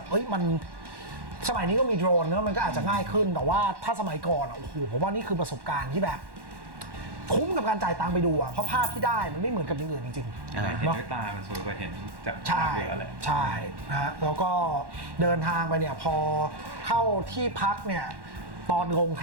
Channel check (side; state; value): left; late; 1.1 ms